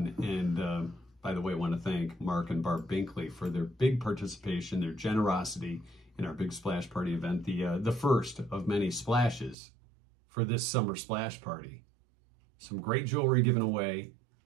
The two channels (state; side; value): drops out; left; at 9.6 s